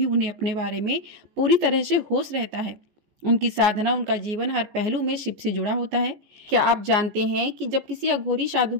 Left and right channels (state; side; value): late; left; 14 ms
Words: उन्हें अपने बारे में पूरी तरह से होश रहता है। उनकी साधना, उनका जीवन हर पहलू में शिव से जुड़ा होता है। क्या आप जानते हैं कि जब किसी अघोरी साधु